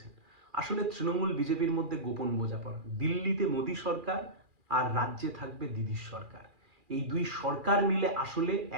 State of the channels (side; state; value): left; late; 2.4 ms